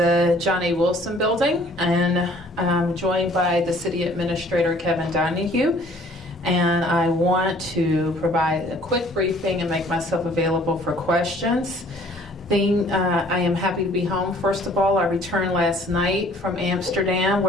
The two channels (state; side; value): normal; both; correlation 0.56